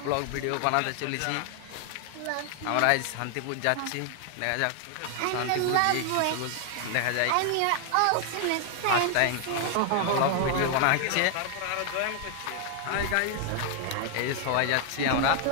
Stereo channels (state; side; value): different; both; correlation 0.00